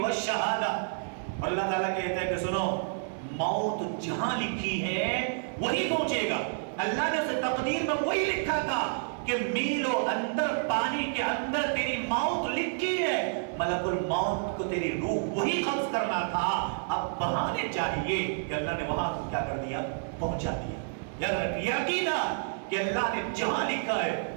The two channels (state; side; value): silent; left; 58 dB below the other